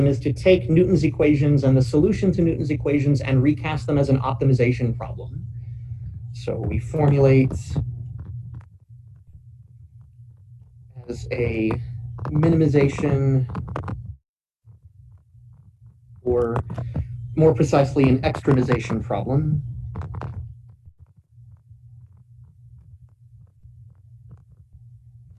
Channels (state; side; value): identical; both; correlation 1.00